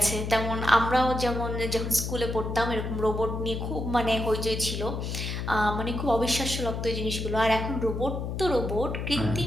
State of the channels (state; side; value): noise; left; hum, 4 dB below the sound